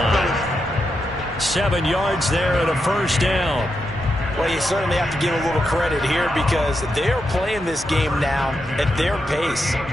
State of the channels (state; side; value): normal; both; correlation 0.85